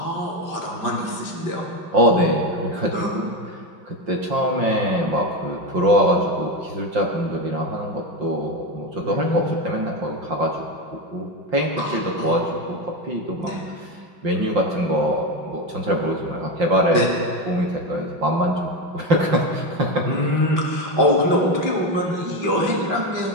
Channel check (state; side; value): late; left; 5.7 ms